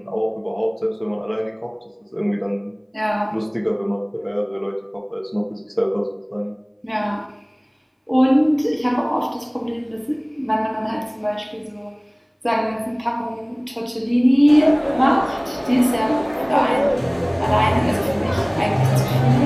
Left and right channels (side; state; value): both; identical; correlation 1.00